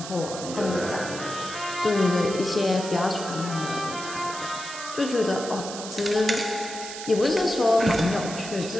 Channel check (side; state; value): right; noise; hiss, 10 dB below the sound